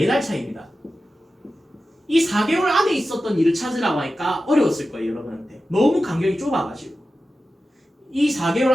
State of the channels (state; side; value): normal; both; correlation 0.93